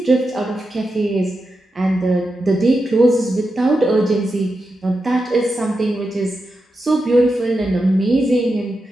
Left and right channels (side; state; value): both; normal; correlation 0.88